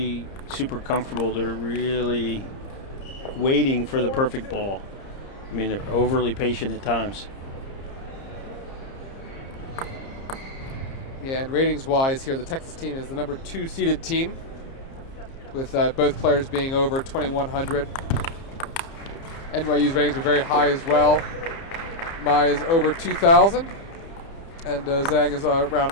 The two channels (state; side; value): late; right; 30 ms